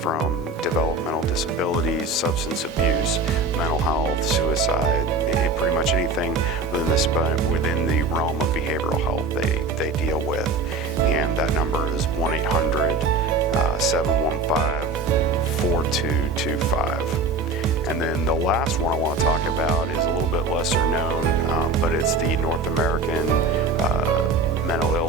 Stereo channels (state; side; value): quieter; left; 3.4 dB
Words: developmental disabilities, substance abuse, mental health, suicide, pretty much anything within the realm of behavioral health they deal with. And that number is 1-800-715-4225. And then the last one I want to talk about is a little bit lesser known, but it's the North American Mental